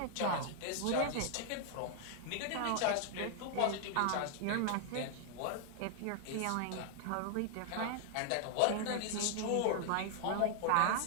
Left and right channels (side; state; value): both; different; correlation 0.00